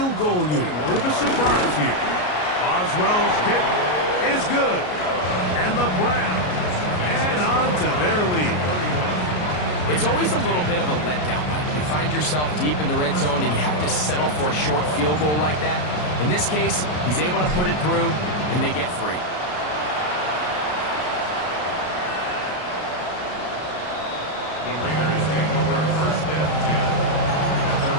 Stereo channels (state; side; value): late; right; 33 ms